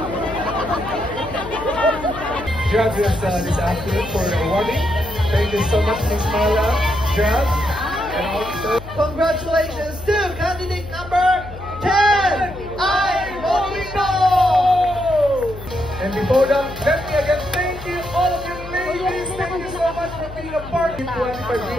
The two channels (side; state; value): left; noise; hum, 14 dB below the sound